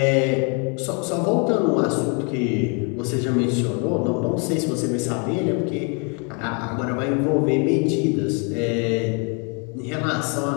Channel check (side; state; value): right; quieter; 35.5 dB